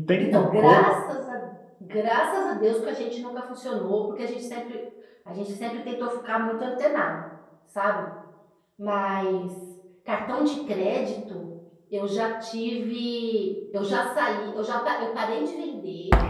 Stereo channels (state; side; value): identical; both; correlation 1.00